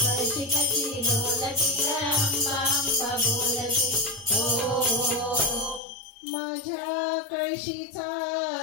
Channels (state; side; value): drops out; right; at 5.8 s